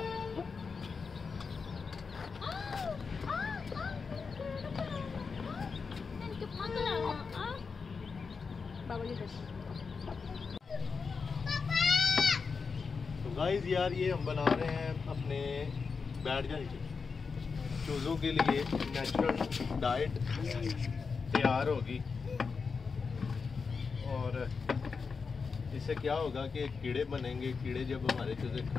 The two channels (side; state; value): right; quieter; 5.1 dB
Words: तो guys यार ये हम बना रहे हैं अपने बैठ जा नीचे चूज़ों के लिए नेचुरल डाइट तैयार होगी। और इससे क्या होगा कि कीड़े बनेंगे। कीड़े जब हमारे चूज़े